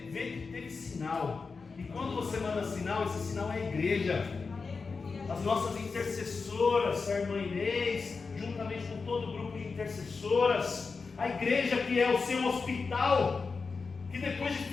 vê que teve sinal. E quando você manda sinal, esse sinal é a igreja. As nossas intercessoras, a irmã Inês, juntamente com todo o grupo de intercessoras, a igreja que é o seu hospital, que depois de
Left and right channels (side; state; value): right; quieter; 4.7 dB